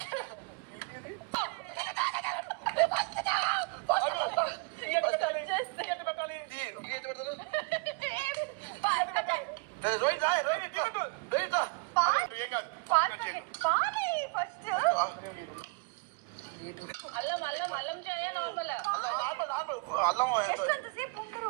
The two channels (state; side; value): quieter; left; 31.8 dB